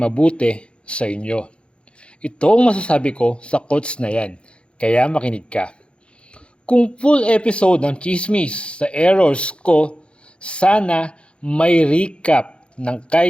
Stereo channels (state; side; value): late; right; 0.058 ms